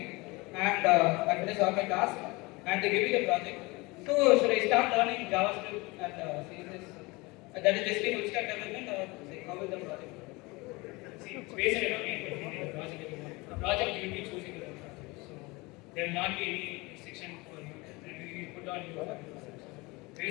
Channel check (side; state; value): right; quieter; 24.3 dB